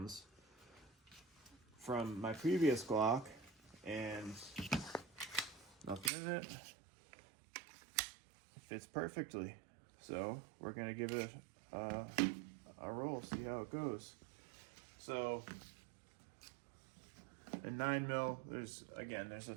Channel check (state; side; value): drops out; left; at 6.1 s